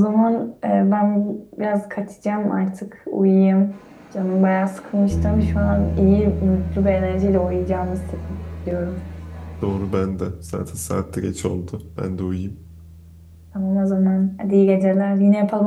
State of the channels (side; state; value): both; identical; correlation 1.00